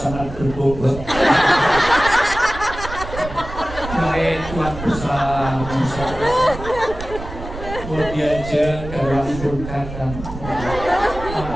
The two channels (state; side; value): noise; right; rumble, 10 dB below the sound